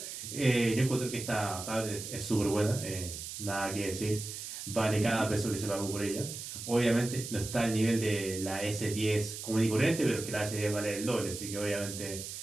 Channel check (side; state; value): right; noise; hiss, 8 dB below the sound